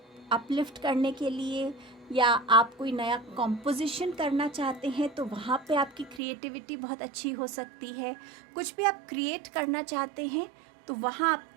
अपलिफ्ट करने के लिए, या आप कोई नया कॉम्पोजिशन करना चाहते हैं तो वहाँ पे आपकी क्रिएटिविटी बहुत अच्छी हो सकती है। कुछ भी आप क्रिएट करना चाहते हैं तो वहाँ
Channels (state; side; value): drops out; left; at 6.2 s